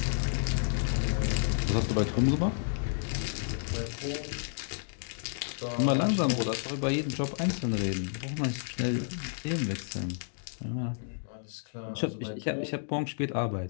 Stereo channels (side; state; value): right; silent; digital silence